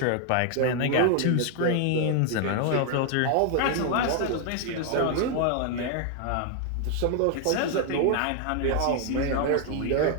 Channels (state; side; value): different; both; correlation 0.00